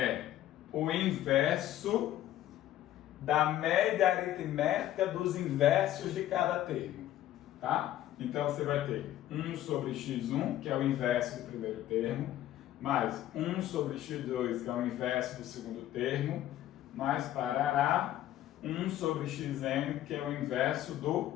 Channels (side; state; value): right; quieter; 13.0 dB